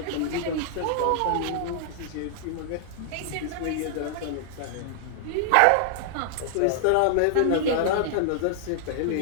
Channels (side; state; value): both; different; correlation -0.01